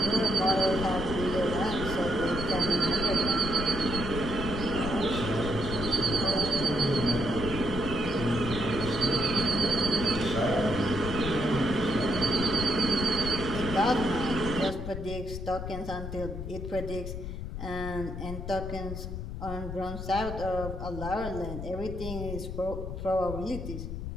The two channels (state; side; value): noise; left; rumble, 6 dB below the sound